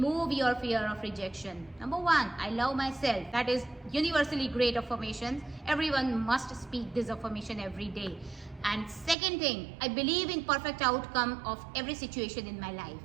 your fear of rejection. Number 1, I love myself. That is universally great affirmation. Everyone must speak this affirmation every day. And second thing, I believe in perfect outcome of every situation in my life.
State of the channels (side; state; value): left; drops out; at 9.2 s